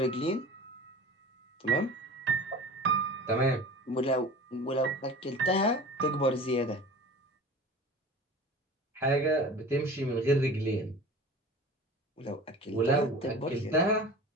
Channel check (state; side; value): normal; both; correlation 0.38